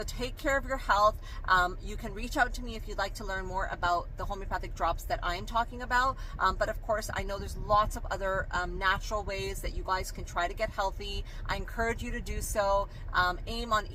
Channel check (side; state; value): both; identical; correlation 1.00